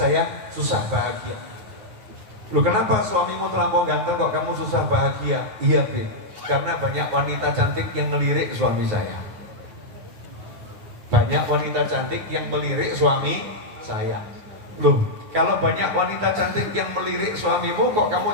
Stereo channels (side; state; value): left; late; 9.5 ms